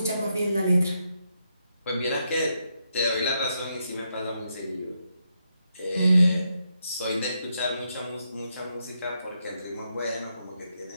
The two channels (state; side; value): inverted; both; correlation -0.81